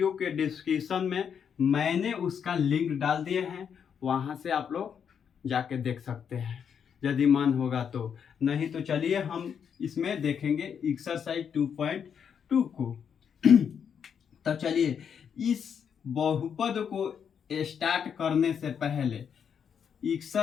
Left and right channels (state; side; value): quieter; right; 7.5 dB